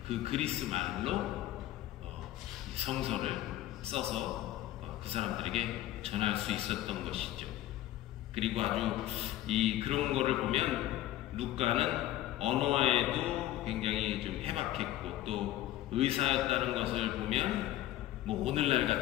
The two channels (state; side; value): quieter; right; 14.2 dB